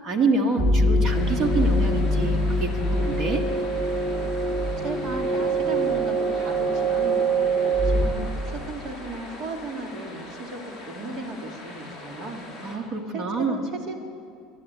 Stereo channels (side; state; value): both; normal; correlation 0.61